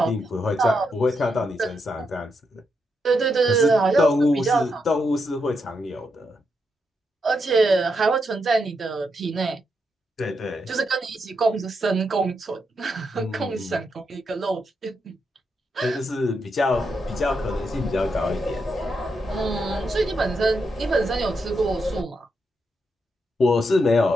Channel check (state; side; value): normal; both; correlation 0.82